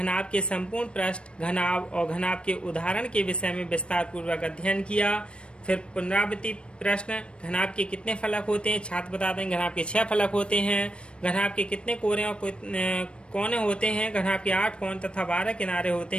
के संपूर्ण पृष्ठ, घनाभ और घनाभ के उदाहरण के विषय में विस्तार पूर्वक अध्ययन किया। फिर पुनरावृत्ति प्रश्न। घनाभ के कितने फलक होते हैं? छात्र बता दें घनाभ के 6 फलक होते हैं। घनाभ के कितने कोने होते हैं? घनाभ के 8 कोण तथा 12 किनारे होते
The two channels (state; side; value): late; right; 0.057 ms